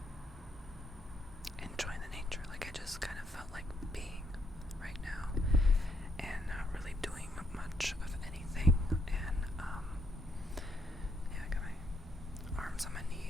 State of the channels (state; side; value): normal; both; correlation 0.73